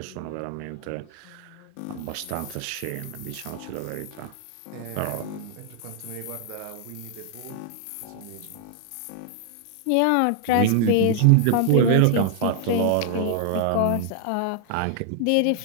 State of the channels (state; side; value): different; both; correlation 0.00